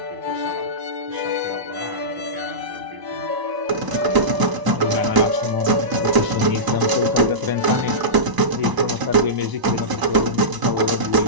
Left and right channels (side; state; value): left; late; 1.0 ms